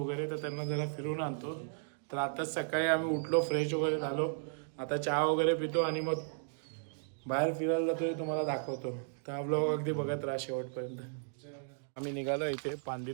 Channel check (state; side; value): silent; left; digital silence